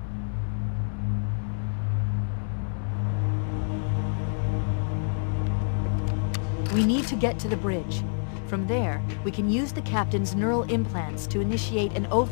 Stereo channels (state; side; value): silent; right; 60 dB below the other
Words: We need to get to the bridge. From there, we can use the captain's neural implants to initiate an